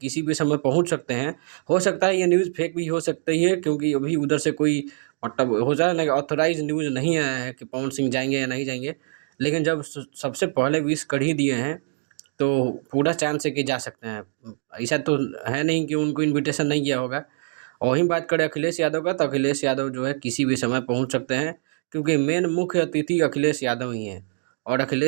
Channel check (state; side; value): silent; left; digital silence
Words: किसी भी समय पहुंच सकते हैं। हो सकता है ये न्यूज़ फेक भी हो सकती है क्योंकि अभी उधर से कोई मतलब हो जाए ना ऑथराइज न्यूज़ नहीं आया है कि पवन सिंह जाएंगे या नहीं जाएंगे। लेकिन जब सबसे पहले विश कर ही दिए हैं तो पूरा चांस है कि जा सकते हैं। ऐसा तो है नहीं कि उनको इनविटेशन नहीं किया होगा। और वहीं बात करें अखिलेश यादव का, तो अखिलेश यादव जो है किसी भी समय पहुँच सकते हैं क्योंकि मेन मुख्य अतिथि अखिलेश यादव ही हैं। और